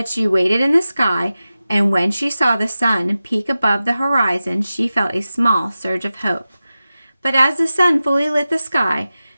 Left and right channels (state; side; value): inverted; both; correlation -0.94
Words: she waited in the sky, and when she saw the sun peak above the horizon, she felt a small surge of hope. But as the sun fully lit the sky,